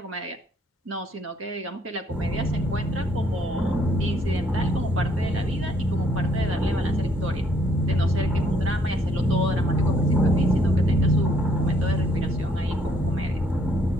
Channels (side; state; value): both; normal; correlation 0.67